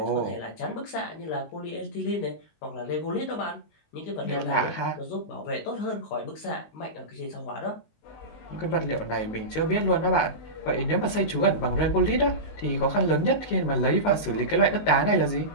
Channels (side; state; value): right; late; 19 ms